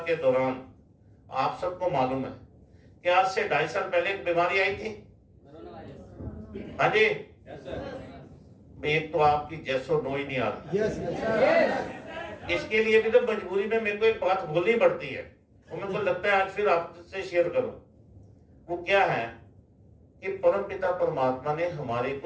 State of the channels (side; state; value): both; identical; correlation 1.00